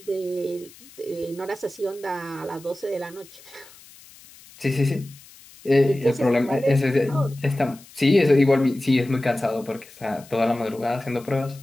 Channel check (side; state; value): left; noise; hiss, 22 dB below the sound